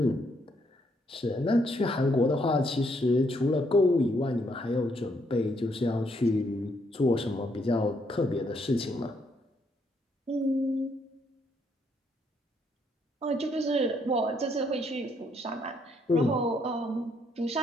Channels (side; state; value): both; normal; correlation 0.72